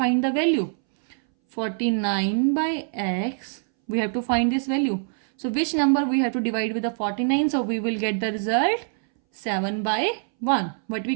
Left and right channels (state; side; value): silent; left; 62 dB below the other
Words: the value? 49 by x, we have to find this value. So which number we have to divide with the 49? So we will get the result 7 by 1. What we